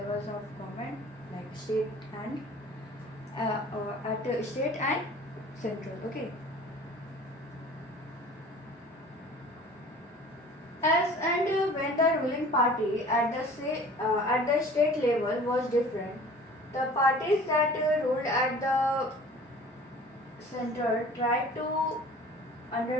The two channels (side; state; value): both; normal; correlation 0.46